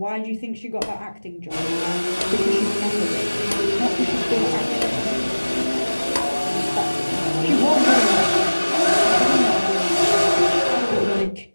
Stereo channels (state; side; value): inverted; both; correlation -1.00